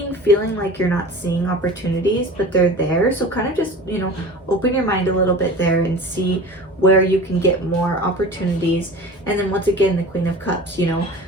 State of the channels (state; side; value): normal; both; correlation 0.38